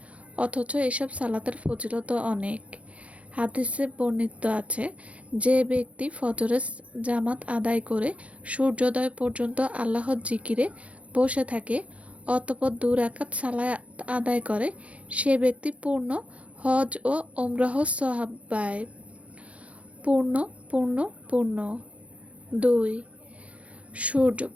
অথচ এসব সালাতের ফজিলত অনেক। হাদিসে বর্ণিত আছে, যে ব্যক্তি ফজরের জামাত আদায় করে সূর্যোদয় পর্যন্ত আল্লাহর জিকিরে বসে থাকে, অতঃপর 2 রাকাত সালাত আদায় করে, সে ব্যক্তি পূর্ণ হজ ও উমরাহ সওয়াব পায়। পূর্ণ পূর্ণ পূর্ণ 2 সূর্য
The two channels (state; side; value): late; left; 0.064 ms